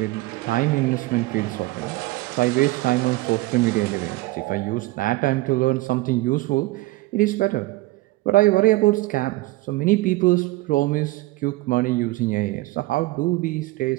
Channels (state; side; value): quieter; left; 19.5 dB